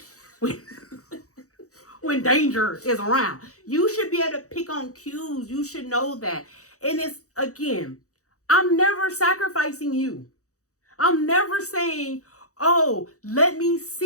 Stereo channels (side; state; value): right; late; 0.65 ms